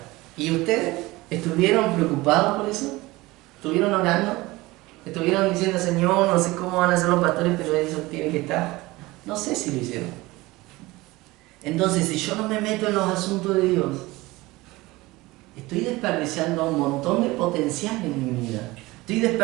¿Y ustedes estuvieron preocupados por eso? ¿Estuvieron orando? ¿Estuvieron diciendo, Señor, no sé cómo van a ser los pastores, pero eso tiene que estar? No sé si lo hicieron. Entonces, si yo no me meto en los asuntos de Dios, estoy desperdiciando un montón de potencial en mi vida. Estoy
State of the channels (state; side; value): quieter; left; 20.4 dB